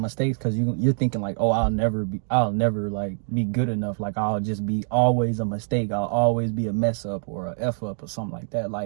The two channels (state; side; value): silent; left; digital silence